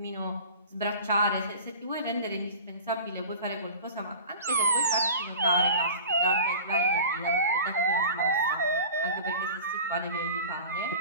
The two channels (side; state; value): both; inverted; correlation -0.38